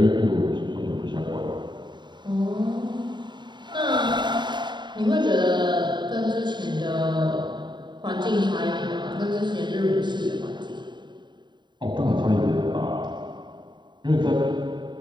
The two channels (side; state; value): left; late; 0.22 ms